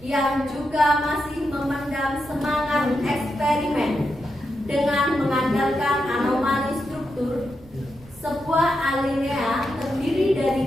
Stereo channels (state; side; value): noise; right; rumble, 23 dB below the sound